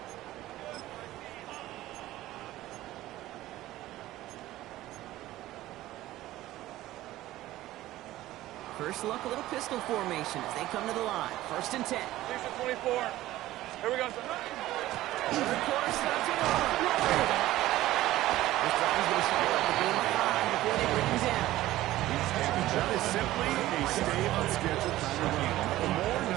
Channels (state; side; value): quieter; left; 15.7 dB